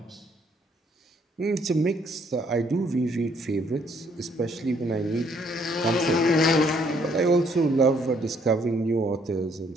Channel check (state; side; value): normal; both; correlation 0.67